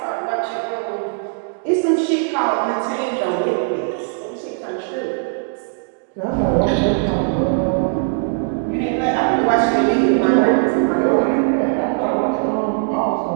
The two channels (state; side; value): silent; left; digital silence